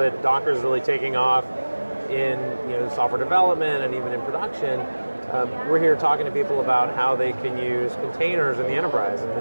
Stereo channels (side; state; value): both; inverted; correlation -1.00